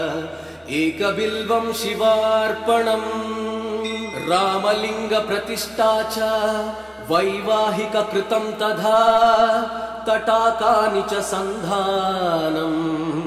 एकबिल्वं शिवार्पणम् रामलिंग प्रतिष्ठा च वैवाहिक कृतं तथा तटाकानि च सन्धानम्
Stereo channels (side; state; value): both; identical; correlation 1.00